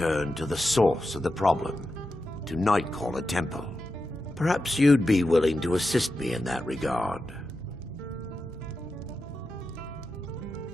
to the source of the problem, to Nightcaller Temple. Perhaps you'd be willing to assist me in that regard.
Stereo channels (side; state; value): both; normal; correlation 0.90